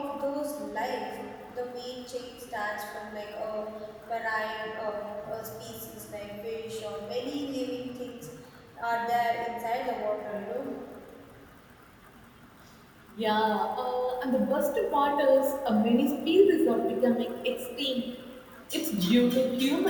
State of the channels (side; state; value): both; identical; correlation 1.00